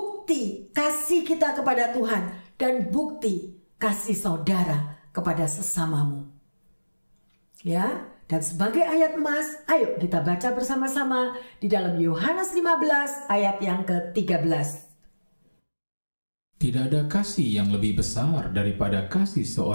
kasih kita kepada Tuhan dan bukti kasih saudara kepada sesamamu? Ya, dan sebagai ayat emas, ayo kita baca bersama-sama di dalam Yohanes 15 ayat yang ke-13. Tidak ada kasih yang lebih besar daripada kasih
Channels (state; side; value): inverted; both; correlation -1.00